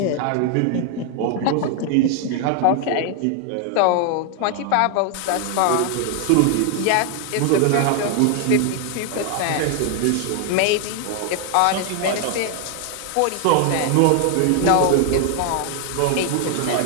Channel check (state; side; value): different; both; correlation 0.00